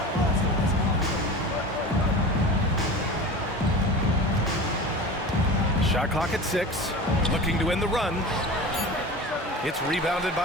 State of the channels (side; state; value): both; normal; correlation 0.33